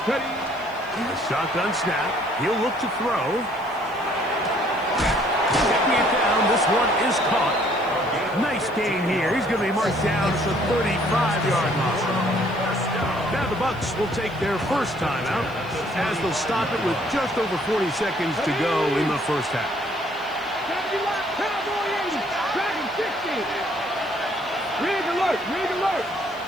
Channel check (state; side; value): noise; right; hiss, 27 dB below the sound